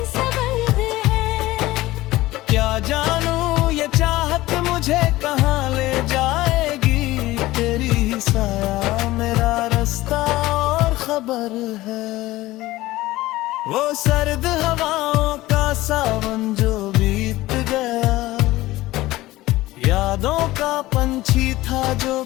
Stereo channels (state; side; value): quieter; right; 17.7 dB